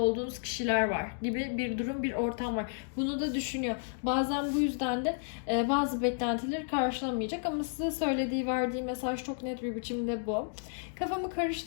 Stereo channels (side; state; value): right; silent; digital silence